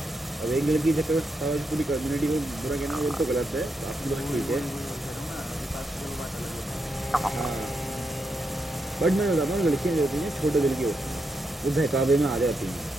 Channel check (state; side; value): normal; both; correlation 0.83